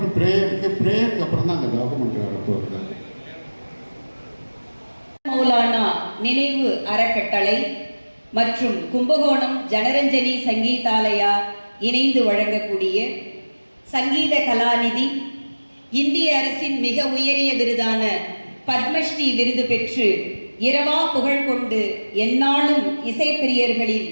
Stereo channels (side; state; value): both; inverted; correlation -1.00